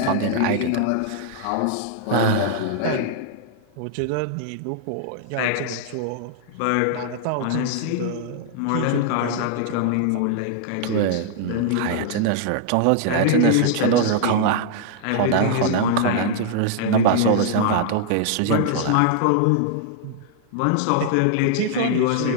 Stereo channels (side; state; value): both; different; correlation -0.01